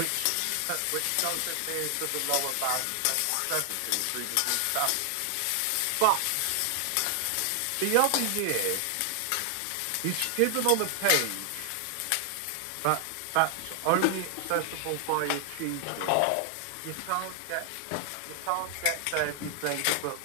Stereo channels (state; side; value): different; both; correlation 0.00